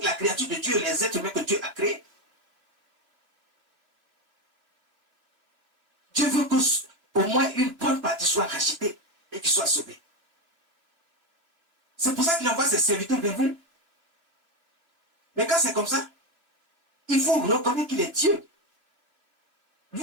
la créature de Dieu, les êtres humains que Dieu a créés. Dieu veut qu'au moins une bonne partie soit rachetée et qu'il soit sauvé. C'est pour ça qu'il envoie ses serviteurs vers vous. Mais quand c'est comme ça, il faut reconnaître qu'il est Dieu.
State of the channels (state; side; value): late; left; 2.8 ms